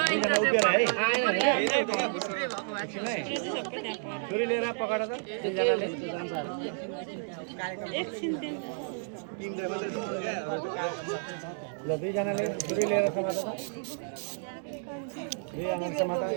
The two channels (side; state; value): left; silent; 57 dB below the other